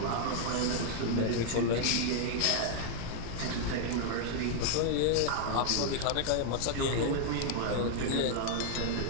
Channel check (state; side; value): different; both; correlation 0.00